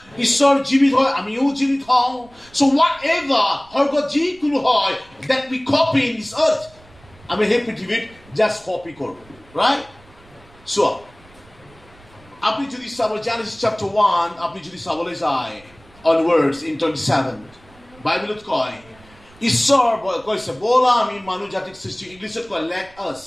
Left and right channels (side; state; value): right; noise; rumble, 26 dB below the sound